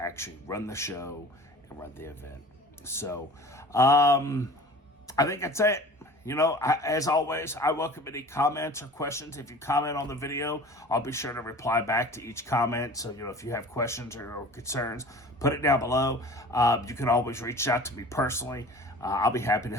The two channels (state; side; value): normal; both; correlation 0.42